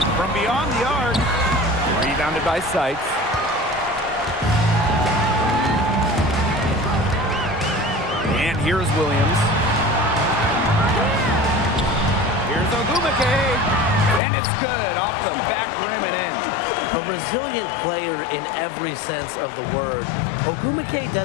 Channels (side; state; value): right; drops out; at 14.2 s